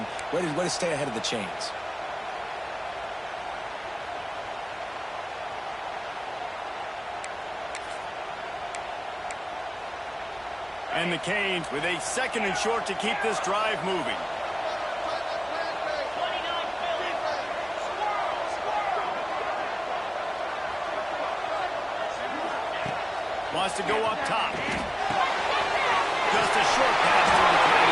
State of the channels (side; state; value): both; identical; correlation 1.00